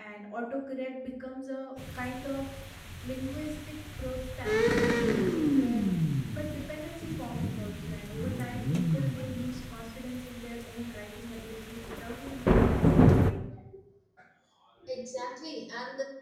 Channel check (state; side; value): identical; both; correlation 1.00